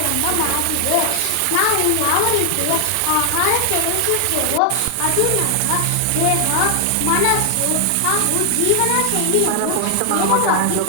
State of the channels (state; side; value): different; both; correlation 0.00